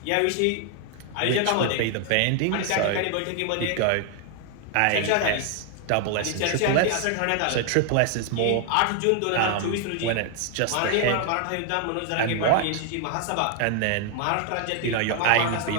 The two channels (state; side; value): different; both; correlation 0.00